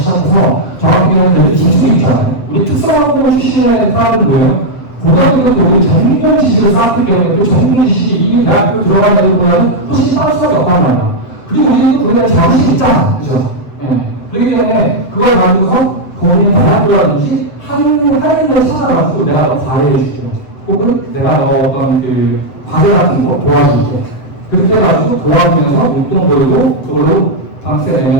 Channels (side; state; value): right; late; 7.8 ms